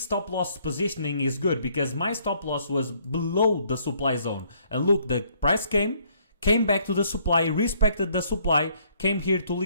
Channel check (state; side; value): inverted; both; correlation -0.65